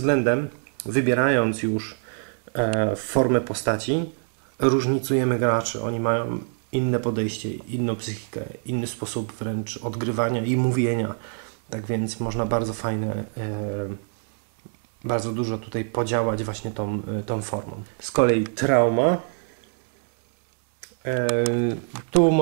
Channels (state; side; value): silent; left; 62 dB below the other